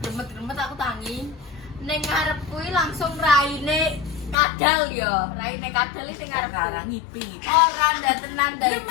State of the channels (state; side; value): drops out; right; at 4.4 s